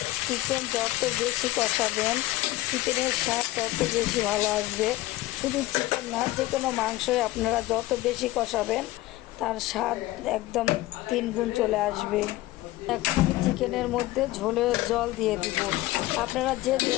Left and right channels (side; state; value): right; quieter; 17.5 dB